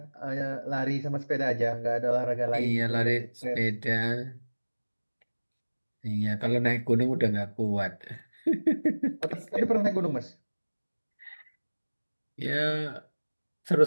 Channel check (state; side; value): inverted; both; correlation -1.00